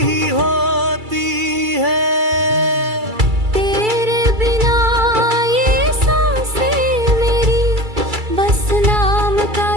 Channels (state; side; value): late; left; 2.3 ms